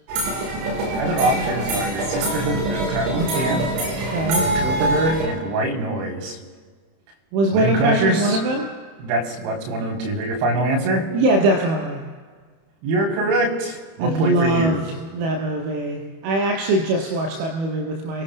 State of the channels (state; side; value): late; left; 31 ms